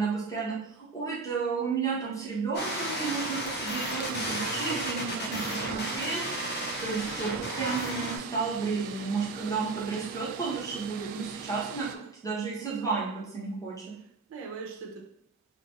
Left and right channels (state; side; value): quieter; left; 3.7 dB